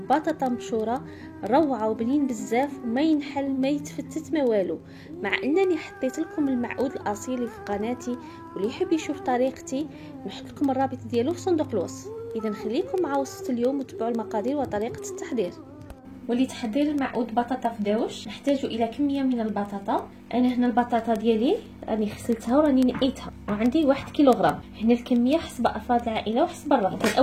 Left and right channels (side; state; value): both; identical; correlation 1.00